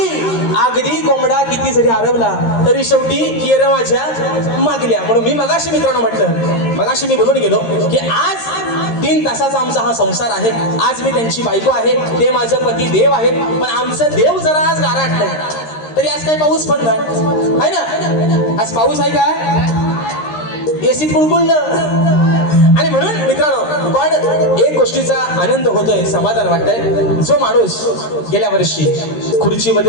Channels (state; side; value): late; right; 13 ms